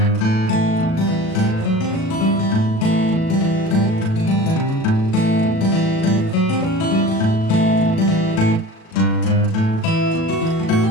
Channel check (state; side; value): late; right; 37 ms